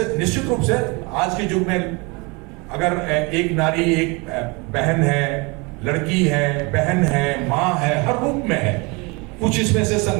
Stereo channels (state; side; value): quieter; left; 28.2 dB